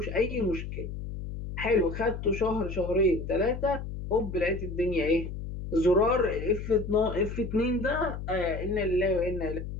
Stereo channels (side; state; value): left; noise; hum, 7 dB below the sound